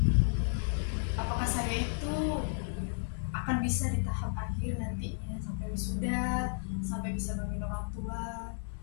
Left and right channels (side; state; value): right; silent; digital silence